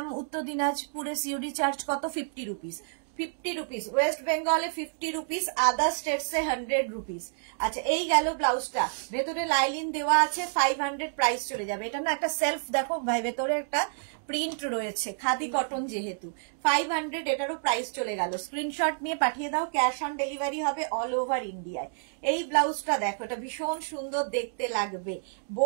উত্তর দিনাজপুরে সিওডি চার্জ কত? 50 রুপিস। 50 রুপিস, ওয়েস্ট বেঙ্গলে 50 রুপিস, আদার স্টেটসে 100 রুপিস। আচ্ছা, এই গেল ব্লাউজটা, ভেতরে লাইলিন দেওয়া আছে, 500 প্রাইস চলে যাবে। এটা না একটা সেলফ দেখো ভাই, ভেতরে একটা প্রিন্ট রয়েছে, খাদি কটন যেহেতু, 500 এটারও প্রাইস চলে গেল। স্ক্রিনশট নিয়ে পাঠিয়ে দাও, ক্যাশ অন ডেলিভারি হবে অল ওভার ইন্ডিয়ায়। এই ব্লাউজটা দেখো, এটা ভীষণ সুন্দর দেখতে লাগবে,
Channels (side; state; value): left; silent; digital silence